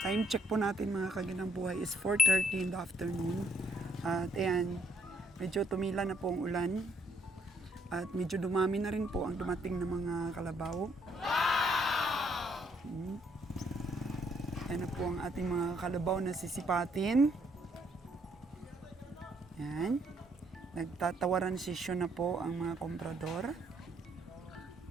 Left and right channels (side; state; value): both; normal; correlation 0.70